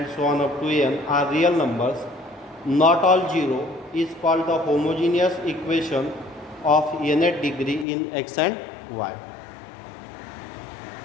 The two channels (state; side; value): drops out; right; at 7.9 s